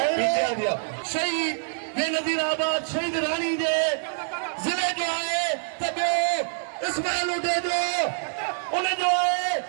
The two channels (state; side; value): silent; left; 61 dB below the other